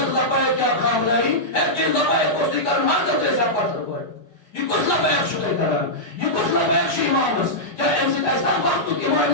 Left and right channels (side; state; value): right; late; 5.1 ms